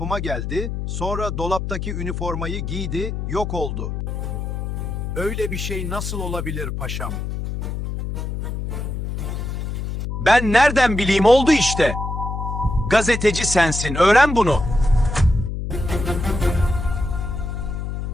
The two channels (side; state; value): left; noise; hum, 4 dB below the sound